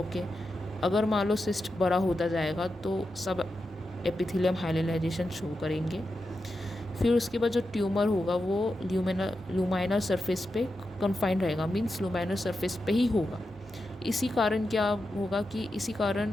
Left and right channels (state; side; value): normal; both; correlation 0.89